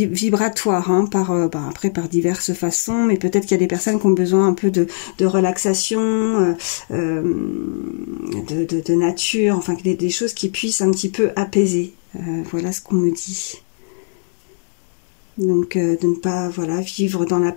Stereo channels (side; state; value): right; silent; digital silence